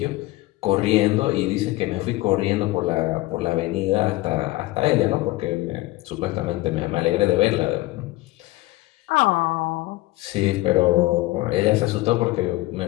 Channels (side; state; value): right; quieter; 19.0 dB